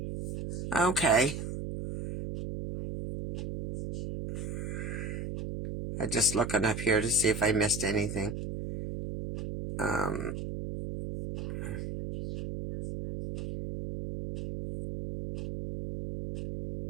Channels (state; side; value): noise; right; hum, 5 dB below the sound